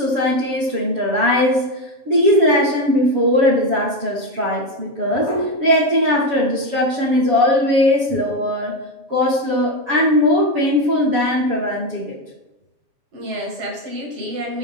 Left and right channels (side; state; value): left; late; 7.2 ms